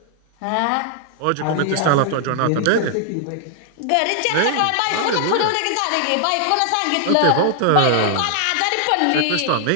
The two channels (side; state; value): both; different; correlation 0.00